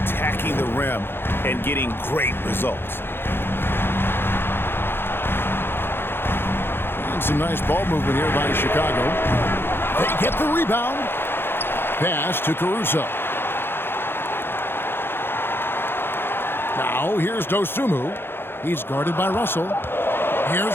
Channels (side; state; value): right; late; 0.11 ms